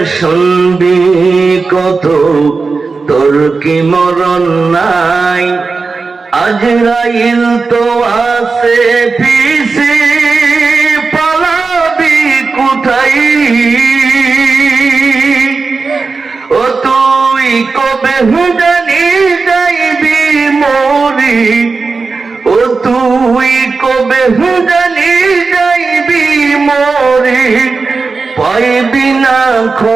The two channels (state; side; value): quieter; left; 4.3 dB